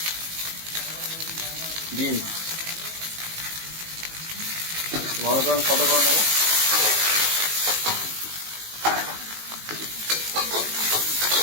বিনস। ভালো করে আমি সাদা করে নেব।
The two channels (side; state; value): left; late; 19 ms